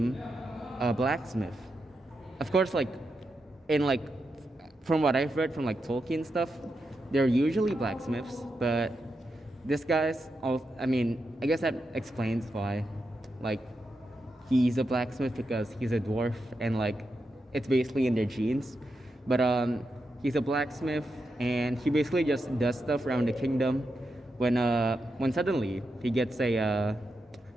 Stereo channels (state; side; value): normal; both; correlation 0.86